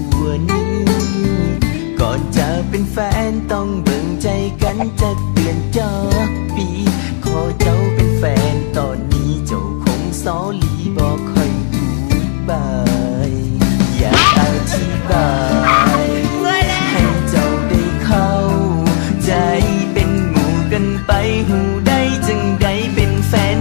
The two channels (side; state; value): right; silent; digital silence